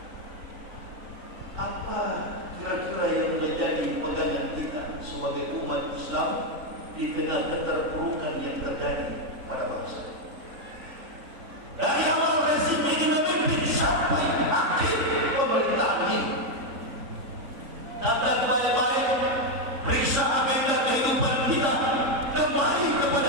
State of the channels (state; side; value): late; left; 3.7 ms